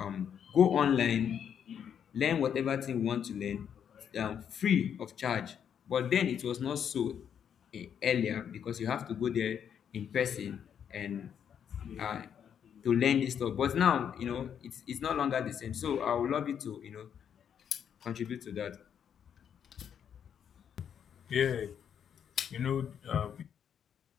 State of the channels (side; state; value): right; quieter; 8.4 dB